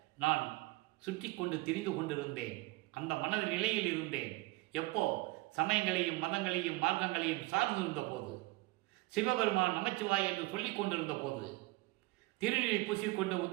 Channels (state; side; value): quieter; left; 21.7 dB